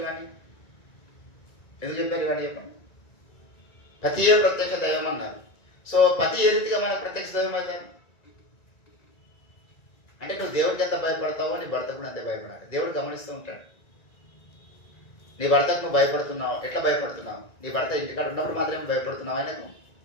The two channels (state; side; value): late; right; 1.9 ms